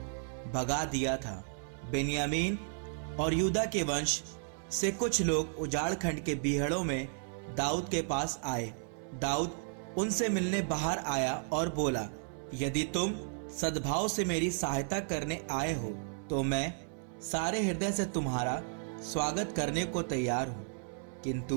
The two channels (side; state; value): left; silent; 55 dB below the other